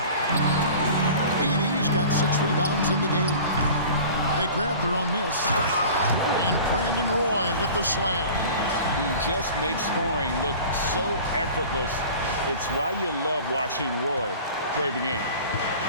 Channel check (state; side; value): inverted; both; correlation -0.41